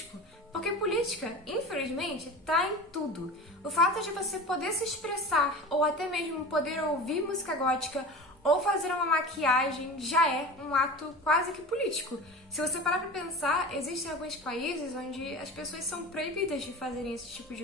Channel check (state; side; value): normal; both; correlation 0.33